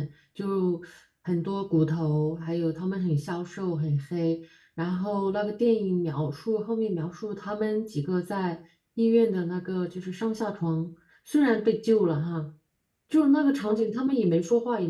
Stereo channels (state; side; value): identical; both; correlation 1.00